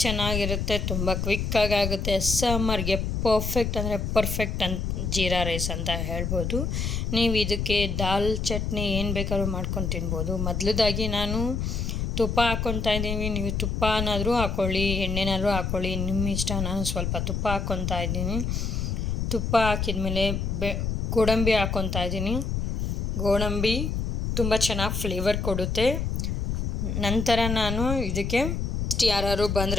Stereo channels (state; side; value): noise; left; rumble, 1 dB below the sound